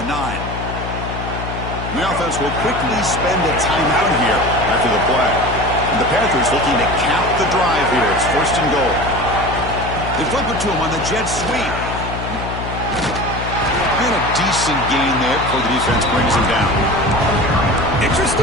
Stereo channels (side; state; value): left; noise; hum, 7 dB below the sound